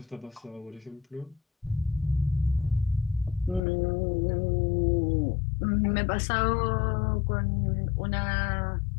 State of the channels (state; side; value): drops out; right; at 3.6 s